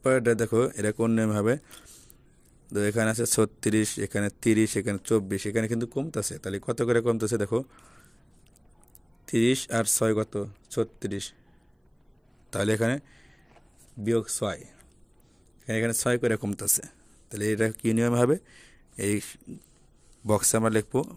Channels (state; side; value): identical; both; correlation 1.00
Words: এটা দেখো এটা কোন নিয়ম হবে, তো এখানে আছে 36, এখানে 30, এখানে 24। এখানে কিন্তু কমতেছে, তাহলে কত করে কমতেছে দেখো, 30 আর 6 কত, 36। তাহলে এখানে বিয়োগ 6, এখানে 6 করে কমতেছে। তাহলে এটা কী নিয়ম হবে, এই বক্সে আমরা লিখবো